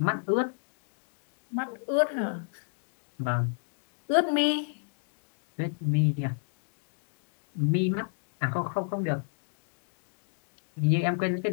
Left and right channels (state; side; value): silent; right; digital silence